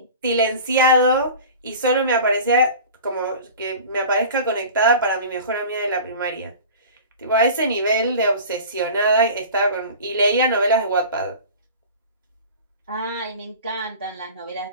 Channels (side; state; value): both; inverted; correlation -0.38